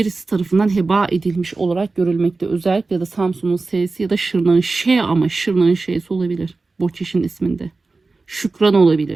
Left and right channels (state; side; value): quieter; left; 3.7 dB